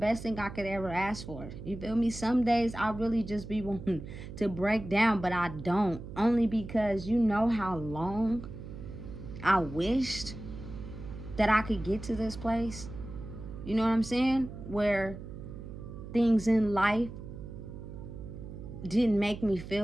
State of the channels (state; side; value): noise; right; hum, 11 dB below the sound